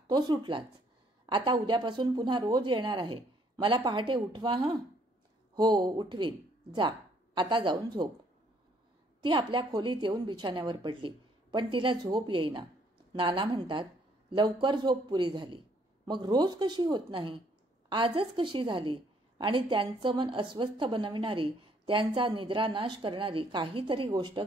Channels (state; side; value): normal; both; correlation 0.66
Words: तो सुटलाच. आता उद्यापासून पुन्हा रोज येणार आहे. मला पहाटे उठवा हं. हो, उठवीन. जा, आता जाऊन झोप. ती आपल्या खोलीत येऊन बिछाण्यावर पडली, पण तिला झोप येईना. नाना म्हणतात, लवकर झोप पुरी झाली, मग रोज कशी होत नाही, आजच कशी झाली? आणि त्यांचं मन अस्वस्थ बनविणारी, त्यांचा निद्रानाश करणारी काहीतरी गोष्ट